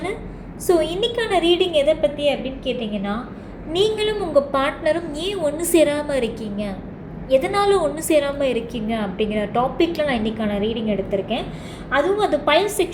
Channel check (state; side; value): identical; both; correlation 1.00